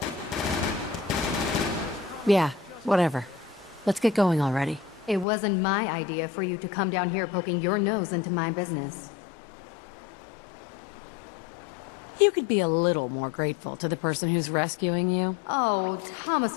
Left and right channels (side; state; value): right; drops out; at 5.2 s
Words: Yeah, whatever. Let's get going already. It wasn't my idea for you to come down here poking your nose into my business. You could be a little more grateful to the person who's rescuing you. Oh,